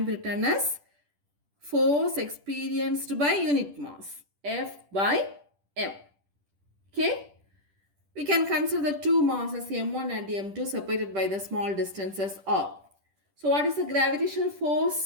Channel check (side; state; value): left; late; 10 ms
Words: be written as force experienced by unit mass, F by M. Okay? We can consider the two masses M1 and M2 separated by the small distances R. So what is the gravitational